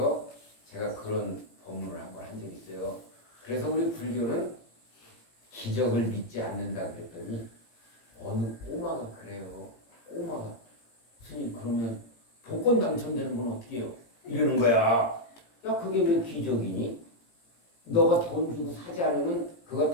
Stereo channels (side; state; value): right; late; 18 ms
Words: 제가 그런 법문을 한번 한 적이 있어요. 그래서 우리 불교는 기적을 믿지 않는다 그랬더니 어느 꼬마가 그래요. 꼬마가 스님 그러면 복권 당첨되는 건 어떻게 해요? 이러는 거야. 야 그게 왜 기적이니? 너가 돈 주고 사지 않으면 그거